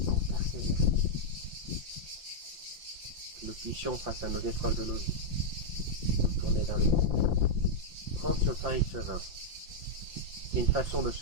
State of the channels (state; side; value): late; left; 5.8 ms